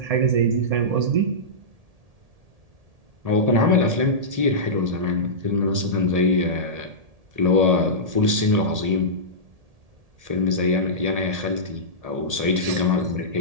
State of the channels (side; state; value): left; late; 1.8 ms